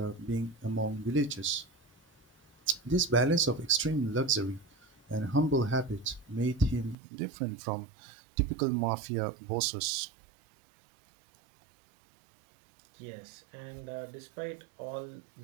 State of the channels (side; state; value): left; drops out; at 7.0 s